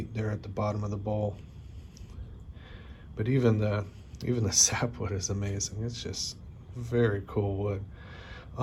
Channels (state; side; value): identical; both; correlation 1.00